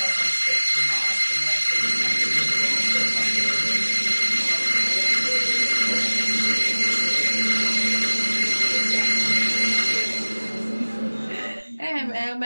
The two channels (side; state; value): both; inverted; correlation -1.00